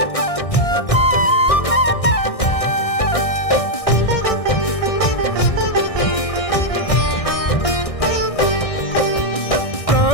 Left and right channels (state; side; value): late; right; 1.6 ms